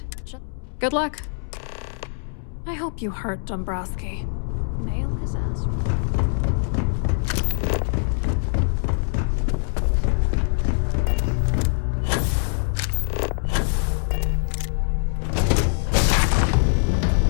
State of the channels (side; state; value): right; silent; 63 dB below the other